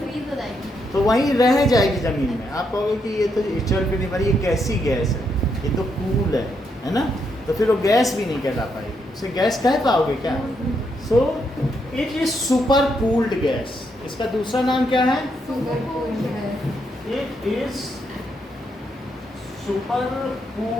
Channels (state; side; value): normal; both; correlation 0.78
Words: हो जाएगी, तो वहीं रह जाएगी ज़मीन में। आप कहोगे कि ये तो एचुअल पे नहीं भरी, ये कैसी गैस है, ये तो कूल है ना? तो फिर वो गैस भी नहीं कहला पाएगी, उसे गैस कह पाओगे क्या? So it is super cooled gas. इसका दूसरा नाम क्या है? It is super